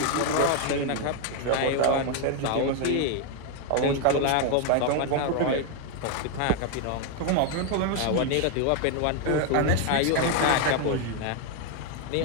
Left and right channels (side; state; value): both; different; correlation 0.01